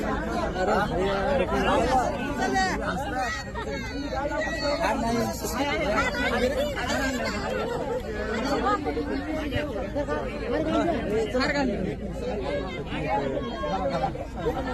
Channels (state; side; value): identical; both; correlation 1.00